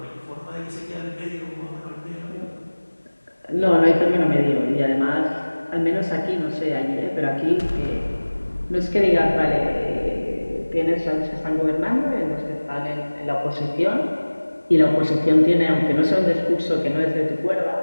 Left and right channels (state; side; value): inverted; both; correlation -1.00